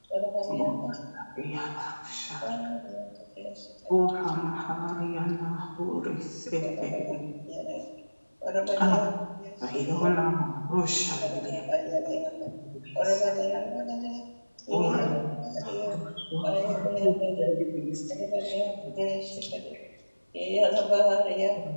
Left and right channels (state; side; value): inverted; both; correlation -1.00